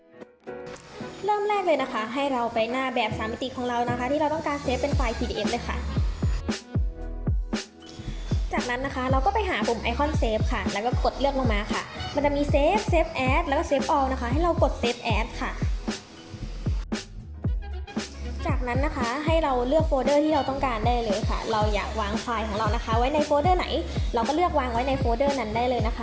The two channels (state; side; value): identical; both; correlation 1.00